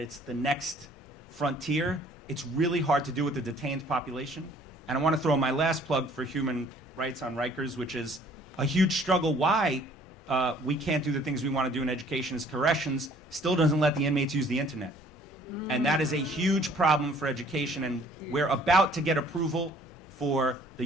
the next frontier. It's really hard to do with the detained population. And I want to throw my last plug for human rights on Rikers, which is a huge struggle. Why we can't do the things we want to do in education is corrections still doesn't let the inmates use the internet. And that is a huge problem for education, and we're about to get approval for the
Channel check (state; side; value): normal; both; correlation 0.57